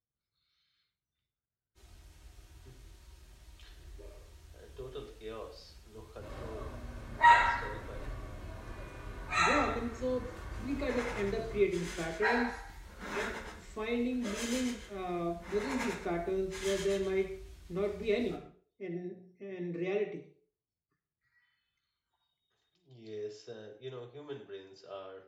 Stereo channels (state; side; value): identical; both; correlation 1.00